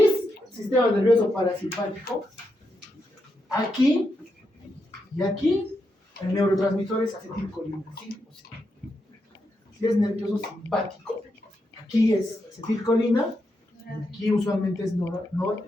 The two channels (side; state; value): both; normal; correlation 0.84